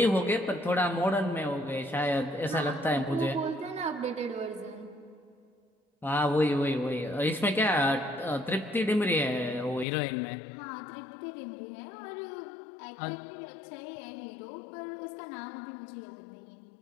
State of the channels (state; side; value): drops out; right; at 9.9 s